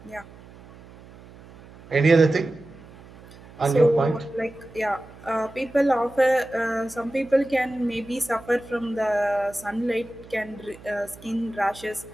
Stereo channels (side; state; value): right; noise; hum, 21 dB below the sound